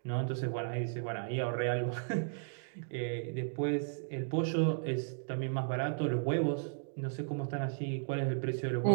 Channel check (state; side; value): silent; left; digital silence